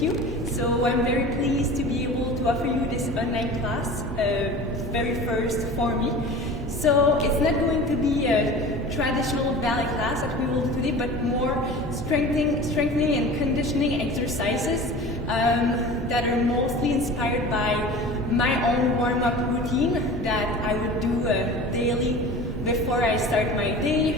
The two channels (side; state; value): both; normal; correlation 0.37